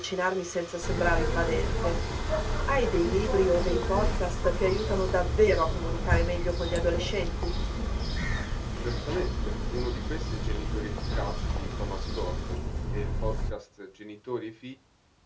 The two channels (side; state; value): both; identical; correlation 1.00